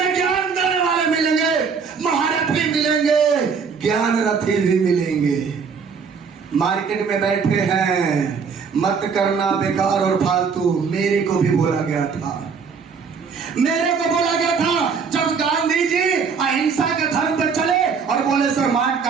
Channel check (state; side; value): quieter; left; 5.8 dB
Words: ज्ञान देने वाले मिलेंगे, महारथी मिलेंगे, ज्ञान रथी भी मिलेंगे। मार्केट में बैठे हैं, मत करना बेकार और फालतू। मेरे को भी बोला गया था, मेरे को बोला गया था जब गांधी जी अहिंसा के धर्म पे चले और बोले सर मार